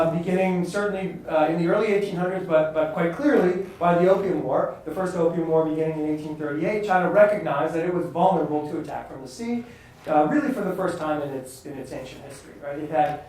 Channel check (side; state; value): both; identical; correlation 1.00